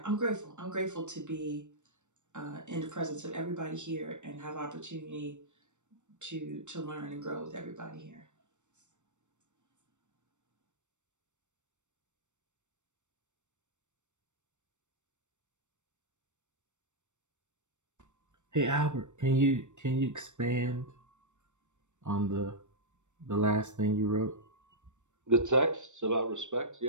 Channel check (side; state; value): left; late; 0.84 ms